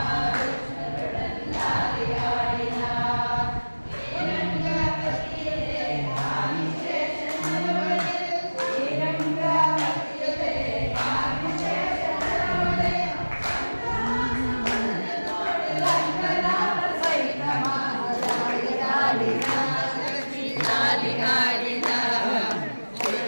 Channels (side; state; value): both; inverted; correlation -1.00